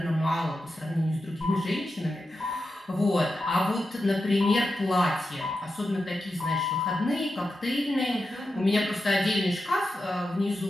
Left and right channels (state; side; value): normal; both; correlation 0.90